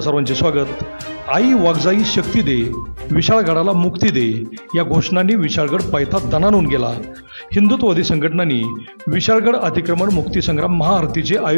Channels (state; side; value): inverted; both; correlation -1.00